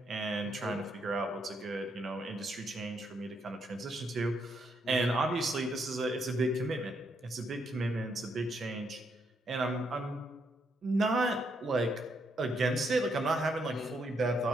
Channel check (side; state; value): both; normal; correlation 0.76